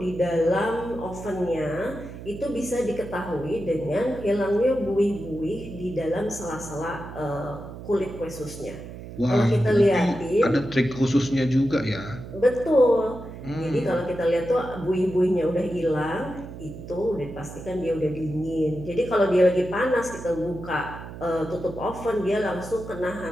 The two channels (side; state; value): right; noise; hum, 12 dB below the sound